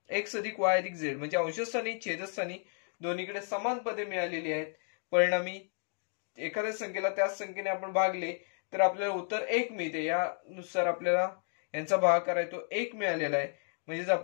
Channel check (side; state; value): right; silent; 55 dB below the other